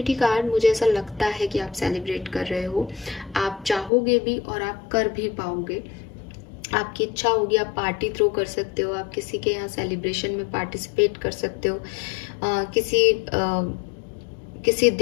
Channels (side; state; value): right; drops out; at 3.9 s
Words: card मुझे ऐसा लगता है कि आप सेलिब्रेट कर रहे हो, आप चाहोगे भी और आप कर भी पाओगे। आपकी इच्छा होगी आप पार्टी थ्रो कर सकते हो, आप किसी के यहाँ सेलिब्रेशन में पार्टिसिपेट कर सकते हो। किसी